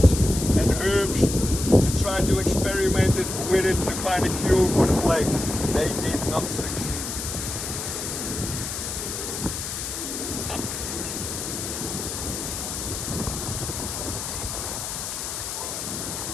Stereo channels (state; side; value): noise; left; hiss, 5 dB below the sound